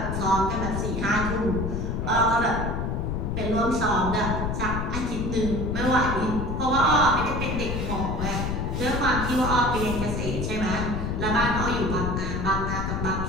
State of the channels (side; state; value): left; noise; rumble, 1 dB below the sound